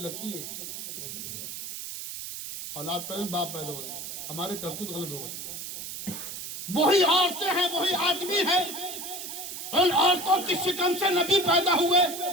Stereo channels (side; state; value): right; noise; hiss, 8 dB below the sound